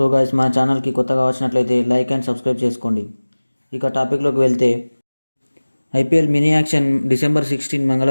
guys, మన ఛానల్కి కొత్తగా వచ్చినట్లయితే లైక్ అండ్ సబ్స్క్రైబ్ చేసుకోండి. ఇక టాపిక్లోకి వెళ్తే, ఐపీఎల్ మినీ యాక్షన్ డిసెంబర్ 16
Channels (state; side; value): inverted; both; correlation -1.00